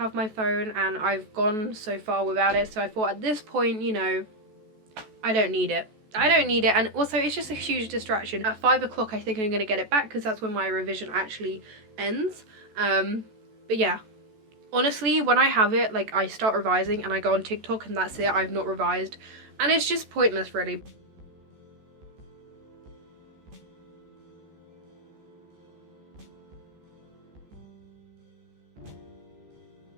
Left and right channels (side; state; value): left; late; 14 ms